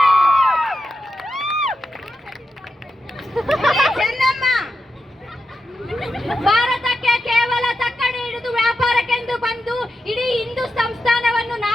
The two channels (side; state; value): both; normal; correlation 0.88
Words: ಹುಲಿ ಚೆನ್ನಮ್ಮ, ಭಾರತಕ್ಕೆ ಕೇವಲ ತಕ್ಕಡಿ ಹಿಡಿದು ವ್ಯಾಪಾರಕ್ಕೆಂದು ಬಂದು ಇಡೀ ಹಿಂದೂ ಸಂಸ್ಥಾನವನ್ನು